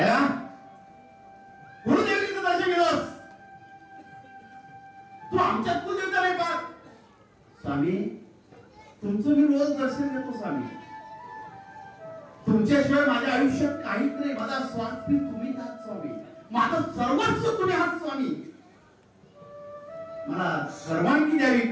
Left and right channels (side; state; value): both; identical; correlation 1.00